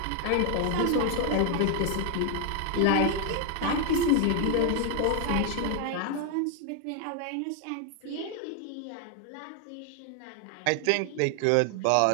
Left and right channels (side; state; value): both; different; correlation 0.00